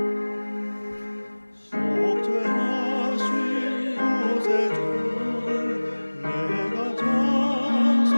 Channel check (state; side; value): inverted; both; correlation -1.00